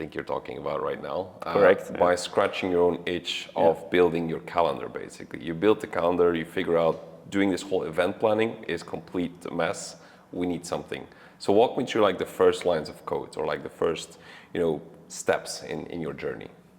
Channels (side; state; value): both; identical; correlation 1.00